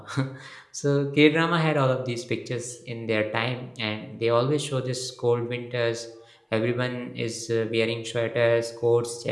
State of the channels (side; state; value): both; identical; correlation 1.00